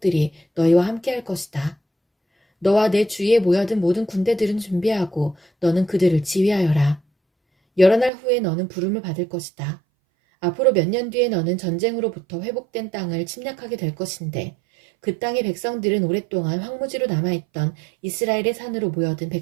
너희와 함께할 것이다. 너와 내 주위에 모여든 모든 군대들은 준비하고 너는 그들을 지휘하여라. 여러 날 후에 너는 부름을 받을 것이다. 앞으로 몇 년 뒤에 너는 전쟁으로부터 회복된 땅을 침략하게 될 것인데 그 땅의 백성들은 오랫동안 황무지로 남아있던 이스라엘의 산으로 모여든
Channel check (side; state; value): left; drops out; at 8.1 s